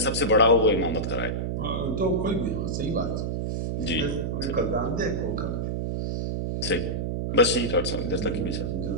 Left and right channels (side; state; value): right; noise; hum, 1 dB below the sound